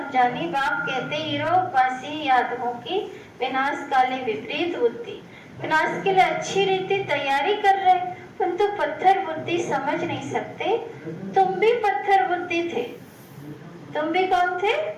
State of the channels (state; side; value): identical; both; correlation 1.00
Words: बाप कहते हीरोवासी यादवों की विनाश काले विपरीत बुद्धि। विनाश के लिए अच्छी रीति तैयारी कर रहे, परंतु पत्थर बुद्धि समझ नहीं सकते। तुम भी पत्थर बुद्धि थे, तुम भी कौन थे?